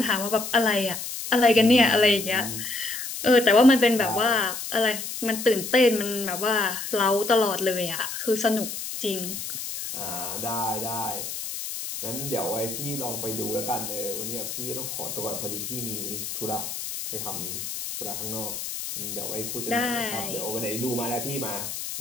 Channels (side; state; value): left; noise; hiss, 6 dB below the sound